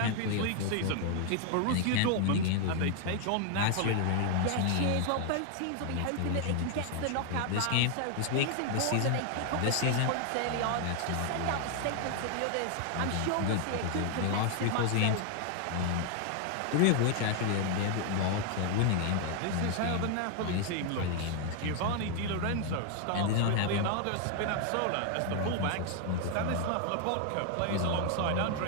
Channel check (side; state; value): both; different; correlation 0.00